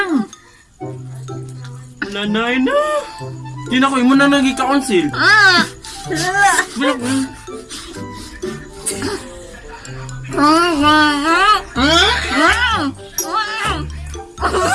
9. Nanay na. Di na ko, imo na nag-i-council.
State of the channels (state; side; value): identical; both; correlation 1.00